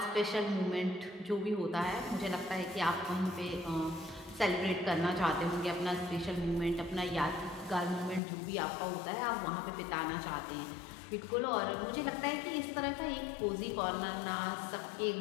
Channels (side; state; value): right; drops out; at 8.2 s